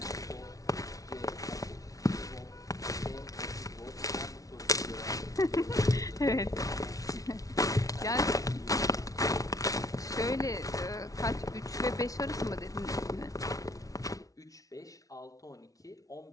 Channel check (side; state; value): right; late; 0.17 ms